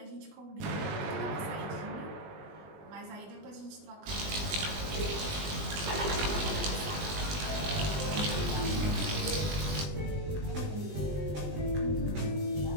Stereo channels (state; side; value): late; left; 20 ms